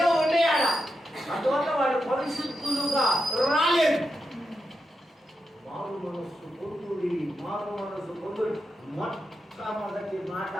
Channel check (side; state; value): both; normal; correlation 0.87